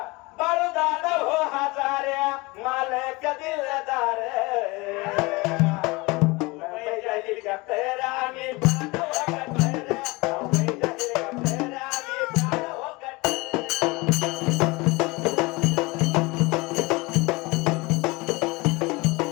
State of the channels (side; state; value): right; quieter; 24.4 dB